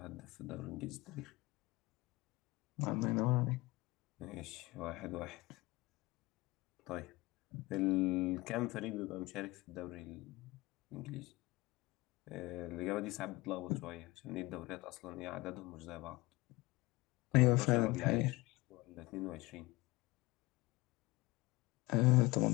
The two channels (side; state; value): right; quieter; 21.4 dB